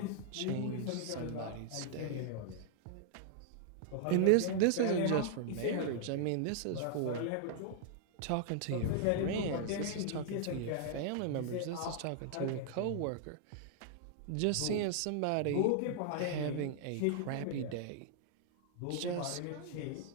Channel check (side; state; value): both; different; correlation -0.01